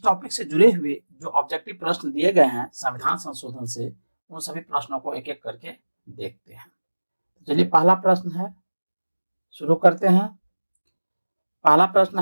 टॉपिक से जुड़े हुए जो ऑब्जेक्टिव प्रश्न दिए गए हैं संविधान संशोधन से, उन सभी प्रश्नों को एक एक करके देखते हैं। चलिए, पहला प्रश्न है, शुरू करते हैं। पहला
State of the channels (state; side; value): inverted; both; correlation -1.00